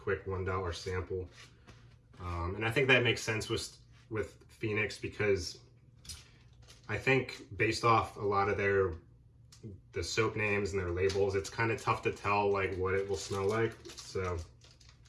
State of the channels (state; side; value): identical; both; correlation 1.00